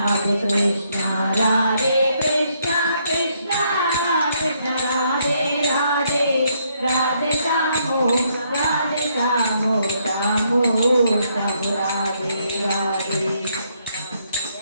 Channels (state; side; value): inverted; both; correlation -0.72